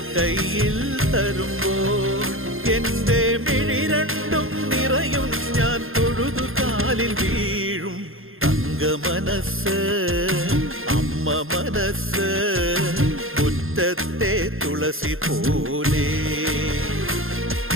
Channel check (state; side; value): late; left; 0.60 ms